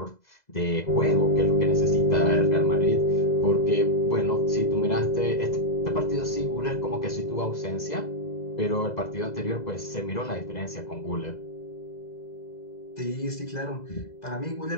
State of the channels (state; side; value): late; right; 2.0 ms